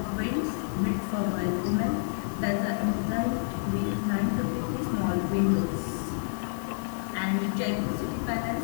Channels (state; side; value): silent; right; 59 dB below the other